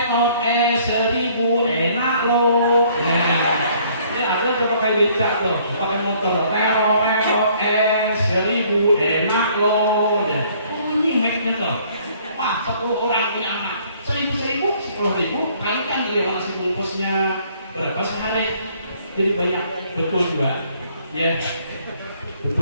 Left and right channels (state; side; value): inverted; both; correlation -0.61